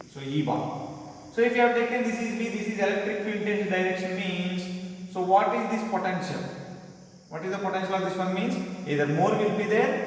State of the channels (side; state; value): both; identical; correlation 1.00